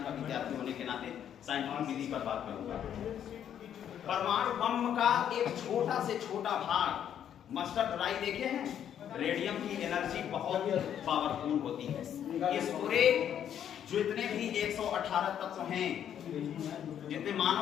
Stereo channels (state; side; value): quieter; right; 9.6 dB